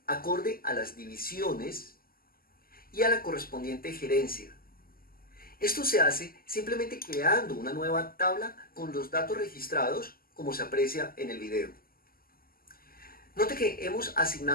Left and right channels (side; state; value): right; late; 0.42 ms